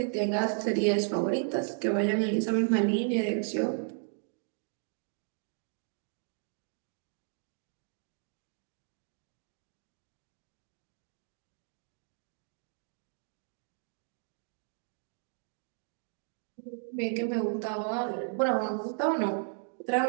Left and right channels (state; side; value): silent; left; 55 dB below the other